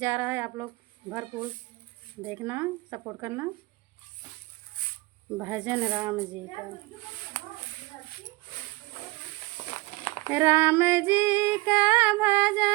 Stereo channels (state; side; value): quieter; left; 22.6 dB